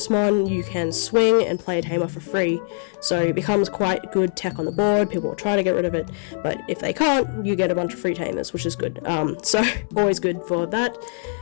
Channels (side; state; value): right; silent; digital silence